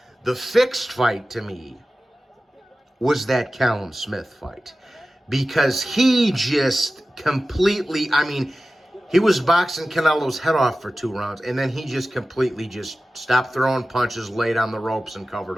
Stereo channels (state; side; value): normal; both; correlation 0.95